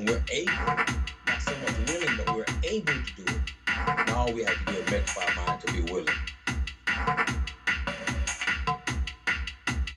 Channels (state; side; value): identical; both; correlation 1.00